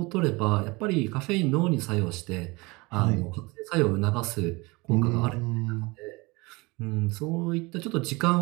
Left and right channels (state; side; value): quieter; left; 24.7 dB